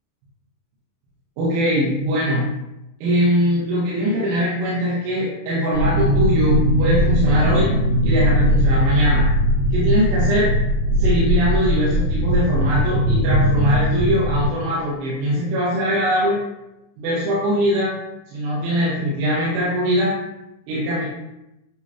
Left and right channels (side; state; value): left; late; 30 ms